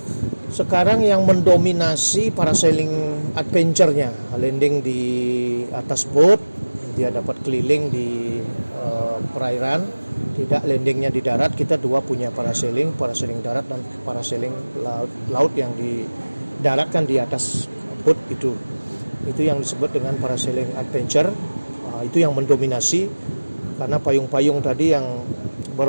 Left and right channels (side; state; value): both; inverted; correlation -1.00